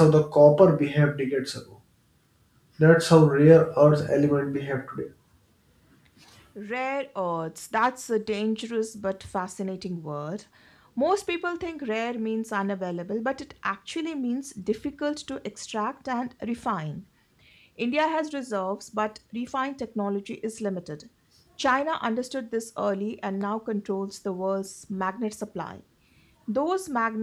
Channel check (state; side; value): identical; both; correlation 1.00